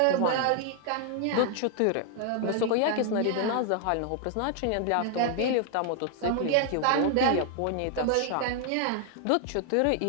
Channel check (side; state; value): both; different; correlation 0.00